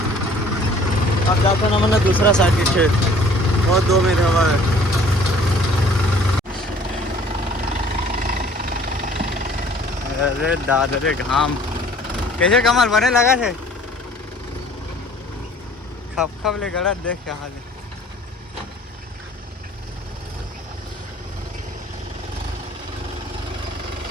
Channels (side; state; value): both; normal; correlation 0.53